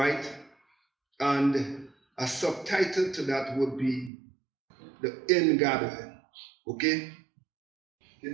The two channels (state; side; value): drops out; left; at 4.1 s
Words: And a subtitle to that would be The Ingathering. Okay?